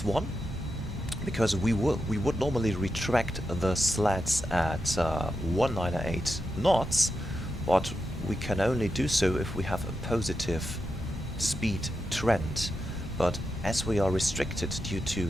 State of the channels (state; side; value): normal; both; correlation 0.87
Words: 1, because we would normally retract the slats at 198 knots, but we can only do so if we have a positive speed trend. But as we are restricted due